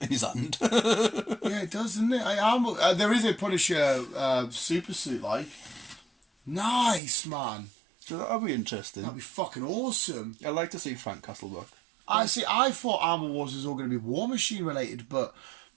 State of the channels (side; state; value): left; drops out; at 7.0 s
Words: his hand. Yeah, it does, doesn't it? There is a Punisher super suit, like. Nice, man. So that'll be interesting. That'd be fucking awesome. I'd like to see Frank Castle back. I thought Armor Wars was all going to be War Machine related, but